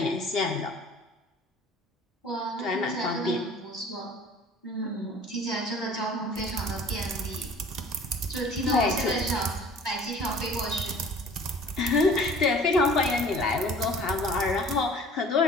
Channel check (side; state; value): both; normal; correlation 0.49